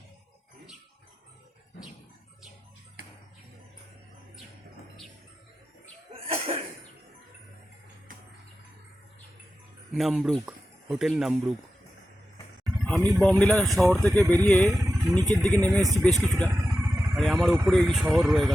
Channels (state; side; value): normal; both; correlation 0.92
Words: নামব্রুক হোটেল, নামব্রুক। আমি বমডিলা শহর থেকে বেরিয়ে নিচের দিকে নেমে এসেছি বেশ কিছুটা, আর আমার উপরে এই শহর রয়ে